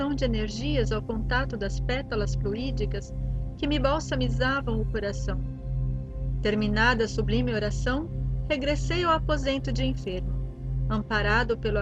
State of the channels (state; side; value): identical; both; correlation 1.00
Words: de energias ao contato das pétalas fluídicas que me balsamizavam o coração. Terminada a sublime oração, regressei ao aposento de enfermo, amparado pelo